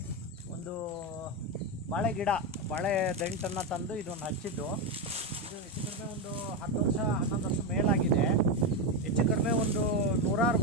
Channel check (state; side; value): normal; both; correlation 0.11